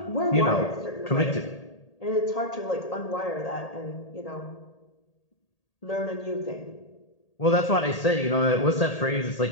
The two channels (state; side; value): late; right; 1.8 ms